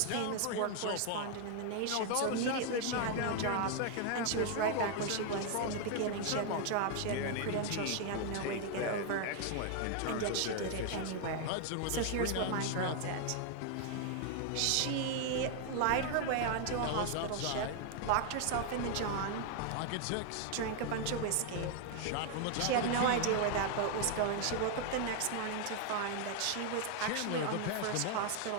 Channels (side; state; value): both; different; correlation 0.00